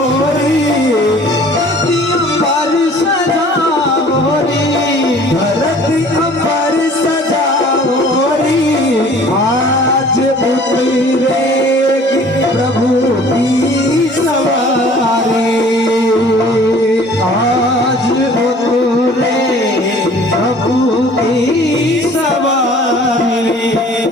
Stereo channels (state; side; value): normal; both; correlation 0.50